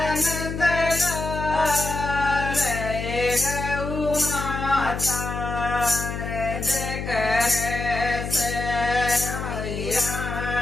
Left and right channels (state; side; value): noise; left; hum, 5 dB below the sound